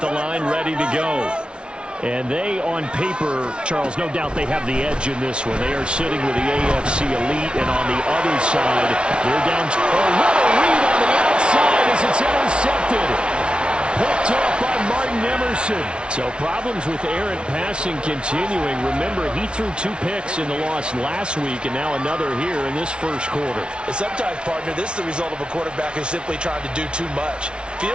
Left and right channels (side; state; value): left; late; 0.057 ms